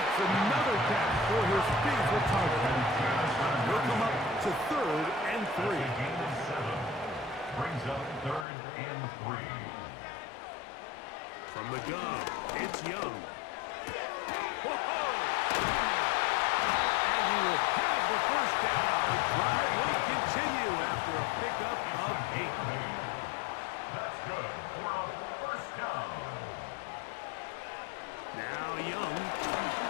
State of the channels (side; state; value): right; drops out; at 8.5 s